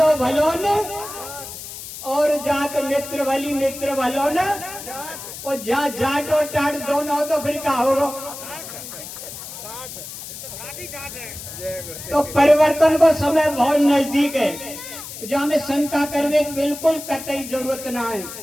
भलो न, और जात मित्र भली मित्र भलो न, और जाट और टाट दोनों हो तो फिर क्या होगा? तो परिवर्तन को समय बहुत नजदीक है, जो हमें शंका करने की बिल्कुल कतई जरूरत ना है।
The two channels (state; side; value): noise; left; hiss, 11 dB below the sound